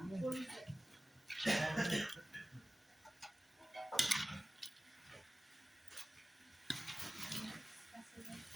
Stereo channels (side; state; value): both; normal; correlation 0.97